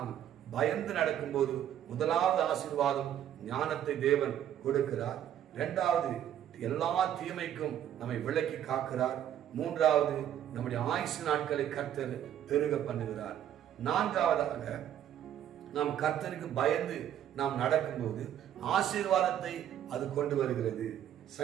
பயந்து நடக்கும் போது முதலாவது ஆசீர்வாதம் ஞானத்தை தேவன் கொடுக்கிறார். இரண்டாவது, எல்லா தீமைக்கும் நம்மை விலக்கி காக்கிறார். மூன்றாவது, நம்முடைய ஆயுசு நாட்களை கர்த்தர் பெருக பண்ணுகிறார். நான்காவதாக, நாம் கர்த்தருக்கு பயந்து நாம் நடக்கும்போது ஆசீர்வாதத்தை அது கொண்டு வருகிறது.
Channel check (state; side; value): quieter; left; 10.6 dB